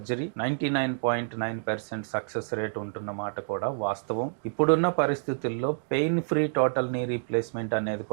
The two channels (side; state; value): left; silent; digital silence